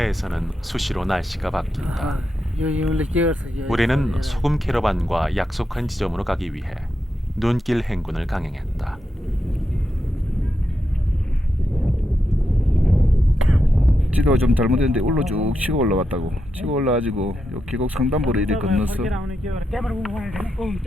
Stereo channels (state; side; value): normal; both; correlation 0.86